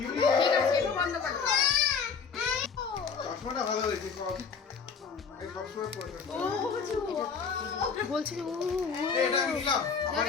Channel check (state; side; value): quieter; right; 5.8 dB